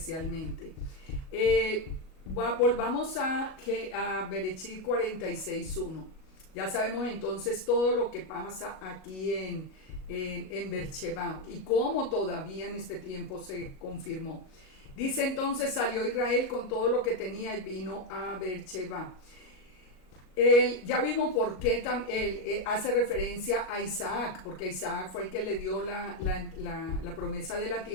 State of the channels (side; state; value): right; late; 38 ms